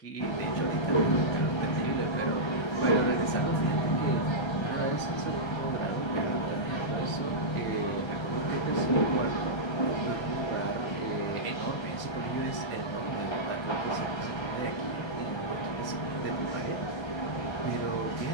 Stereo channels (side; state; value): right; late; 1.3 ms